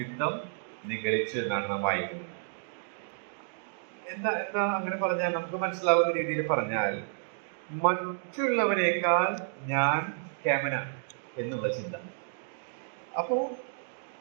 നിഗളിച്ചു എന്നാണ് നാം വായിക്കുന്നത്. എന്താ അങ്ങനെ പറഞ്ഞാൽ നമുക്ക് മനസ്സിലാവുന്ന രീതിയിൽ പറഞ്ഞാൽ, മറ്റുള്ളവരെക്കാൾ ഞാൻ കേമനാണ് എന്നുള്ള ചിന്ത. അപ്പോൾ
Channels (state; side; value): silent; left; digital silence